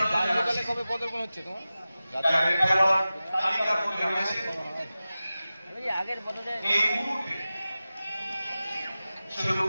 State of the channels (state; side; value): inverted; both; correlation -0.95